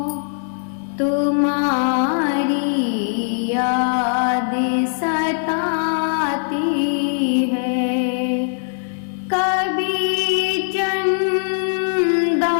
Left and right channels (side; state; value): right; silent; digital silence